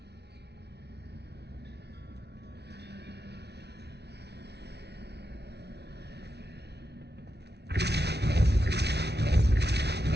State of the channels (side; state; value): left; late; 0.49 ms